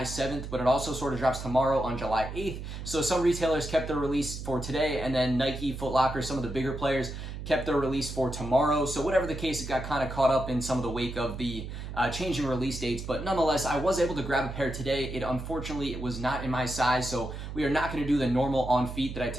7th, but it also sort of drops tomorrow on July 8th. So some retailers kept their release for today, and then Nike, Foot Locker, some of the bigger players kept their release for tomorrow. So whatever the case, it got kind of caught up in some of the wake of the changing release dates. But nonetheless, I was able to grab a pair today. Unfortunately, it was not in my size, so we are not going to do the normal on feet that I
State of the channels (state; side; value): noise; right; hum, 8 dB below the sound